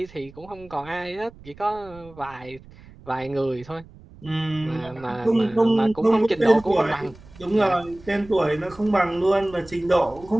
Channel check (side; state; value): right; noise; rumble, 21 dB below the sound